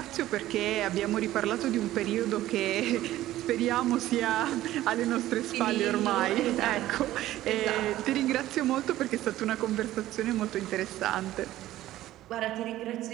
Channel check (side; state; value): left; quieter; 14.6 dB